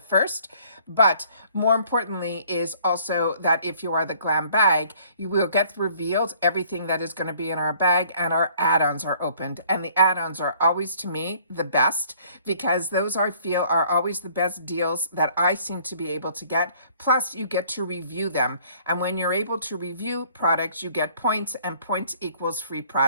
But more importantly is also that if you are the glam bag, you will get revealed everything that is going to be in our bag, and our add-ons are opened. And the add-ons are always, to me, the best, because those I feel are always the best deals that I seem to be able to get. Plus, you get to review them. And when you're able to review products, you get points, and points equals free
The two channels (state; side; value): inverted; both; correlation -0.58